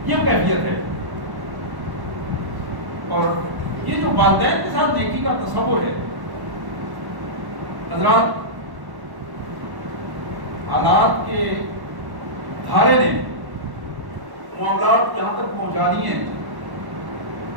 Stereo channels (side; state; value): left; late; 1.1 ms